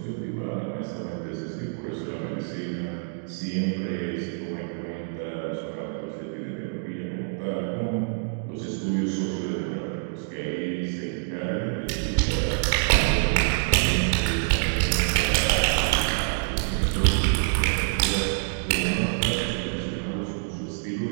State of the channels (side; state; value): left; silent; digital silence